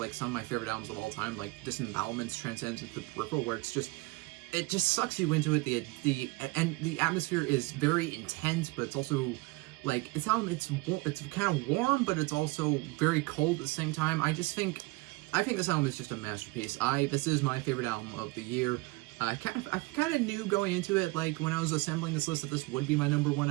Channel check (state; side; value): quieter; left; 23.6 dB